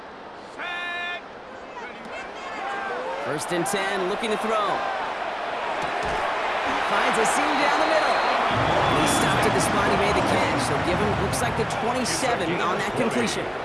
First and 10, looking to throw. Finds a seam down the middle. And he stopped at the spot he made the catch. So give him, looks like the 27 on that completion.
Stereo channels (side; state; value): both; identical; correlation 1.00